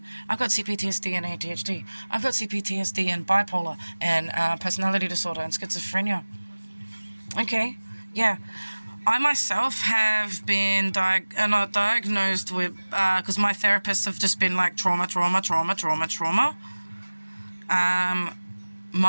I've got CPTSD and ADHD. I've got CPTSD and bipolar and personality disorder and schizophrenia. Okay, yeah. I myself have been not diagnosed with, because my therapists have just been trauma.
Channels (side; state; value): both; inverted; correlation -1.00